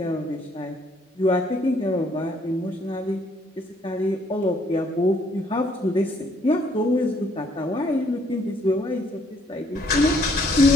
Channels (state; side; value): normal; both; correlation 0.66